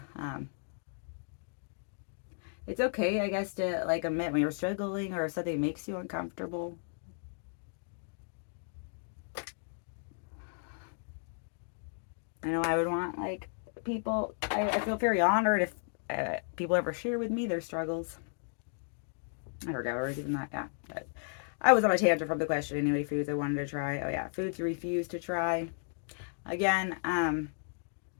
it's okay, I guess, to like admit when you're struggling or if something makes you uncomfortable. I know I would want like people. I feel very honored if people ever share with me their struggles. I forgot where I was even that. Yeah, but I was on a tangent from the question anyway. Foods I wanted to try. Oh yeah, foods you refuse to try. Again,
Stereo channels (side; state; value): right; silent; digital silence